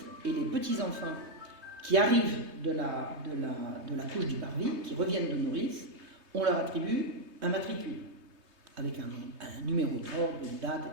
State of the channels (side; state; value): left; late; 3.2 ms